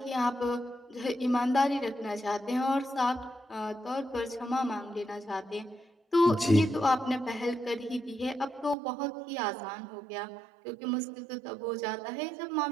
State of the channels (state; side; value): drops out; left; at 8.8 s